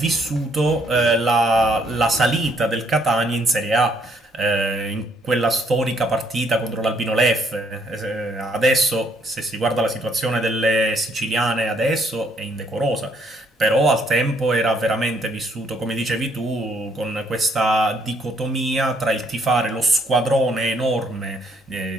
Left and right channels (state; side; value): normal; both; correlation 0.68